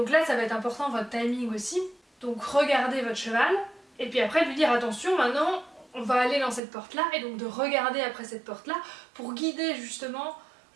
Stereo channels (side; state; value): left; drops out; at 6.6 s